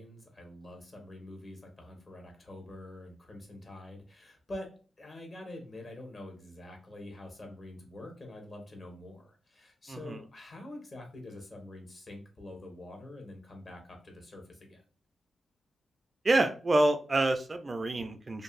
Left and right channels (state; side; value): normal; both; correlation 0.94